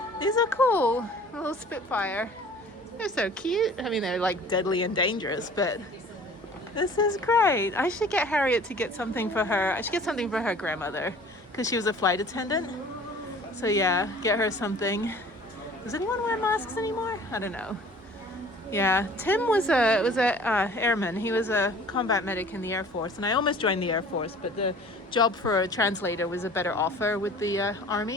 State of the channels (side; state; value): both; normal; correlation 0.48